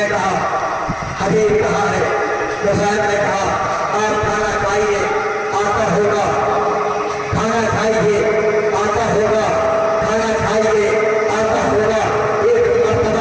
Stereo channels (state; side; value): identical; both; correlation 1.00